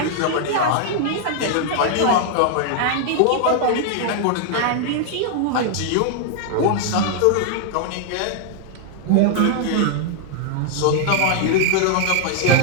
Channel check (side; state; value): both; different; correlation 0.00